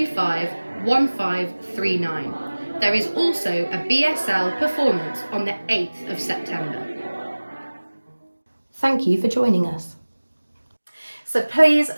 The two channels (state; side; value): inverted; both; correlation -1.00